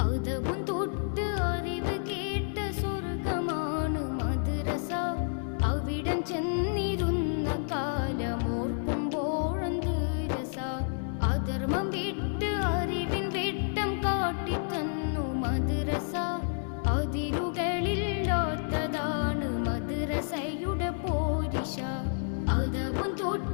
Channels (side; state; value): right; silent; digital silence